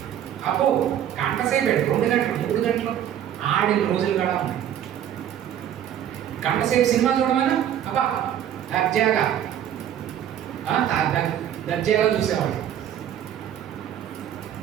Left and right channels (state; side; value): quieter; left; 10.4 dB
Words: అబ్బో గంట సేపు 2 గంటలు 3 గంటలు ఆడిన రోజులు కూడా ఉన్నాయి. గంట సేపు సినిమా చూడమని అబ్బా దర్జాగా చూసేవాడిని.